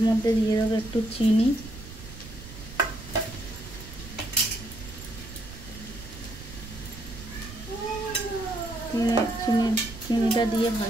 মধ্যে দিয়ে দেবো একটু চিনি, চিনিটা দিয়ে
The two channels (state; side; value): noise; right; rumble, 14 dB below the sound